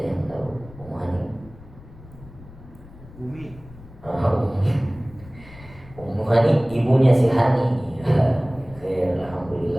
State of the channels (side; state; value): left; noise; rumble, 20 dB below the sound